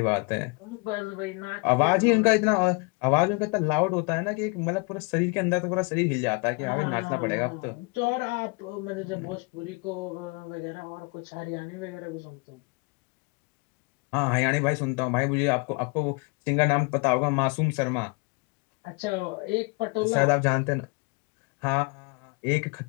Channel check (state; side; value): quieter; right; 30.5 dB